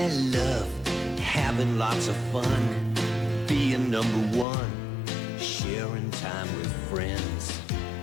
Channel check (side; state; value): right; drops out; at 4.5 s